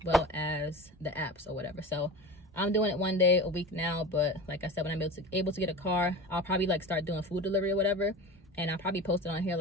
well as the apps or whatever. So I'm doing it 1 day a week now, but like I said, when I'm able to get a car, I'll probably like start doing food delivery or whatever, and I'll probably post it on here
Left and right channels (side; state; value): both; normal; correlation 0.32